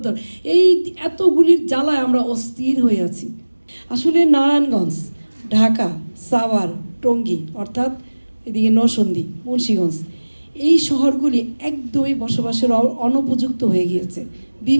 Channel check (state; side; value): inverted; both; correlation -1.00